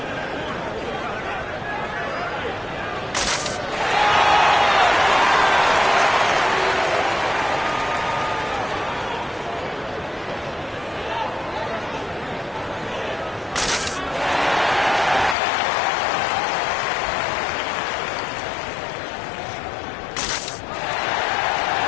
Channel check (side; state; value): right; drops out; at 15.4 s